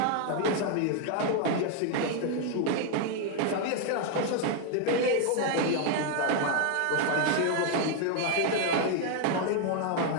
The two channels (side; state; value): both; different; correlation 0.01